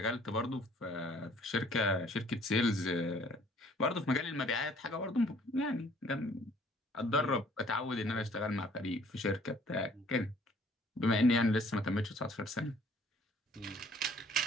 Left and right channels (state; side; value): normal; both; correlation 0.58